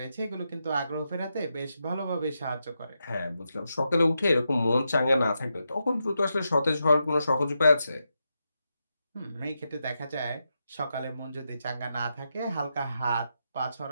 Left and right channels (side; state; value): both; inverted; correlation -0.86